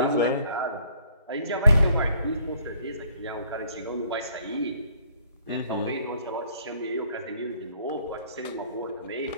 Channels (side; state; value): both; inverted; correlation -0.60